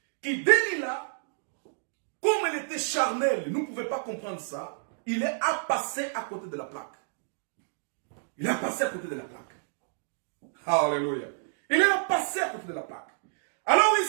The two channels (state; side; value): silent; left; digital silence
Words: que Delilah, comme elle était charnelle, nous ne pouvions pas comprendre ça, il est à passer à côté de la plaque. Il est passé à côté de la plaque. Alléluia. Il est passé à côté de la plaque. Alors